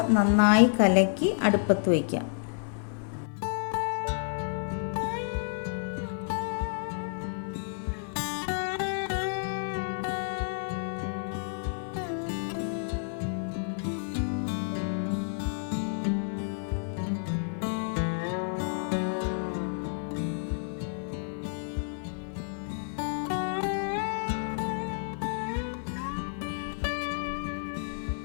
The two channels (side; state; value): right; silent; 56 dB below the other